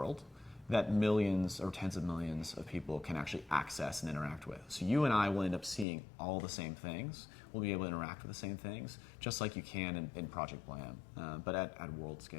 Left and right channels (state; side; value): drops out; right; at 5.9 s